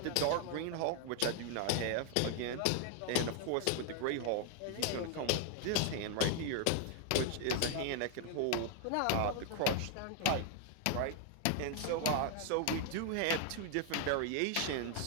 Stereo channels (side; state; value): both; different; correlation 0.00